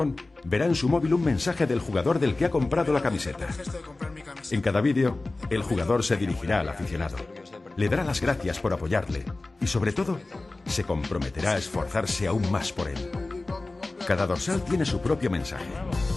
verá en su móvil un mensaje del jugador del que ha comprado la camiseta. En cada vídeo, el jugador se dirigirá al aficionado, le dará las gracias por apoyarle y, sobre todo, se comprometerá a esforzarse aún más por él. Cada dorsal tiene su propio mensaje.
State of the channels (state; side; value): quieter; right; 3.1 dB